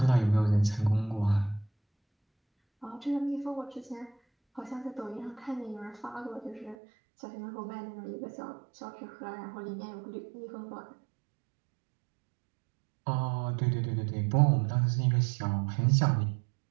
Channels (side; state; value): left; drops out; at 6.8 s